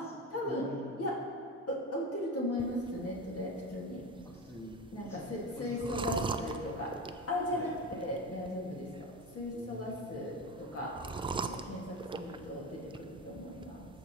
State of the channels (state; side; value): normal; both; correlation 0.24